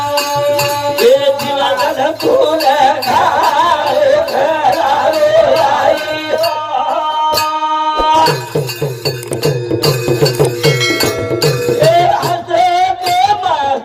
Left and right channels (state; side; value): identical; both; correlation 1.00